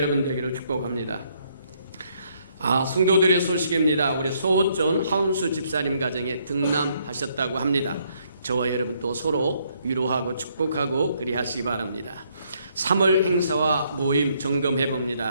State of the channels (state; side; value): inverted; both; correlation -0.70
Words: 되기를 축복합니다. 성도들의 소식입니다. 우리 소호전 하운수 집사님 가정에 등남하셨다고 합니다. 저와 여러분 또 서로 위로하고 축복하고 그리하시기 바랍니다. 3월 행사와 모임 점검해